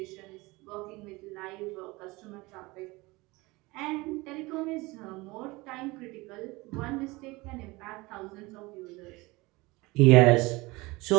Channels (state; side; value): quieter; left; 22.8 dB